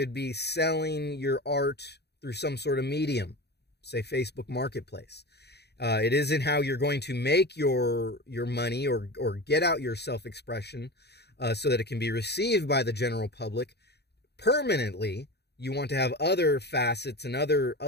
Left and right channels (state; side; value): late; right; 0.48 ms